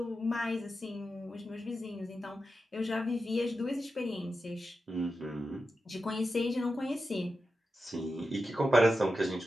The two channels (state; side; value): normal; both; correlation 0.90